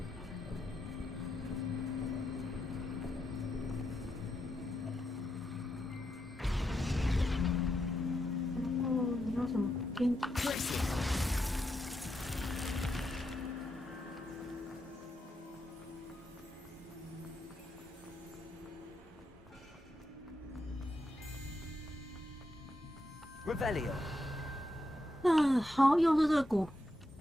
Revelio. 好，又是这个鼓。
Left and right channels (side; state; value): both; normal; correlation 0.84